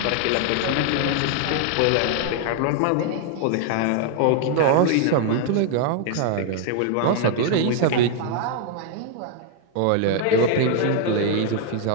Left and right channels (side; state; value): both; different; correlation 0.00